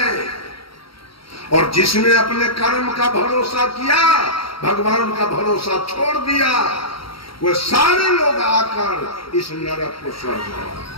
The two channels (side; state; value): right; late; 0.74 ms